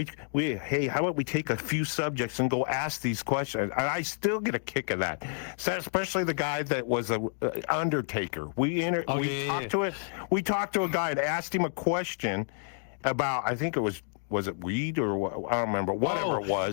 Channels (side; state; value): right; silent; digital silence